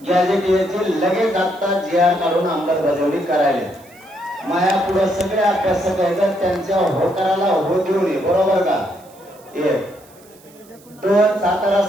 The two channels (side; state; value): right; noise; hiss, 27 dB below the sound